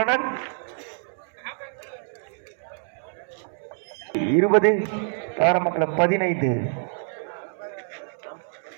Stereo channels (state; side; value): silent; left; 61 dB below the other